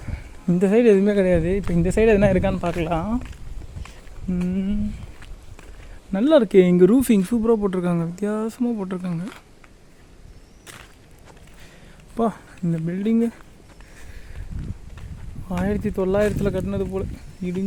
இந்த சைடு எதுவுமே கிடையாது. இப்போ இந்த சைடு எதுனா இருக்கான்னு பார்க்கலாம். நல்லா இருக்கே. இங்கே ரூஃபிங் சூப்பராக போட்டிருக்காங்க, வித்தியாசமாக போட்டிருக்காங்க. அப்பா, இந்த பில்டிங்கு 1900 கட்டினது போல்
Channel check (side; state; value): both; identical; correlation 1.00